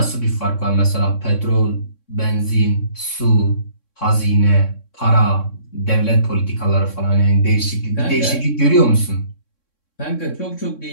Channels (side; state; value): right; late; 3.6 ms